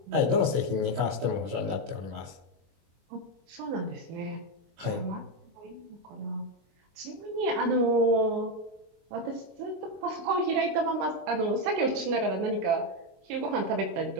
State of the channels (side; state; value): left; late; 24 ms